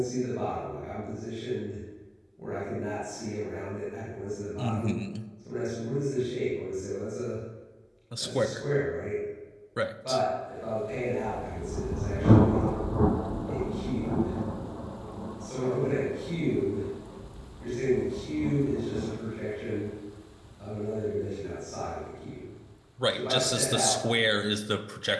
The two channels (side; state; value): both; identical; correlation 1.00